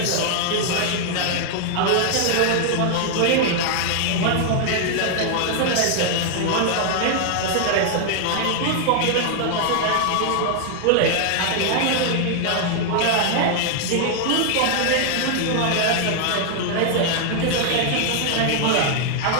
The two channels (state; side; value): different; both; correlation 0.00